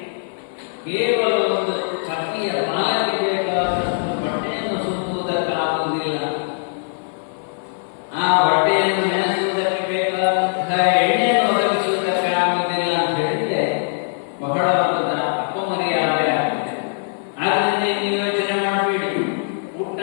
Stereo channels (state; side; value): silent; right; 56 dB below the other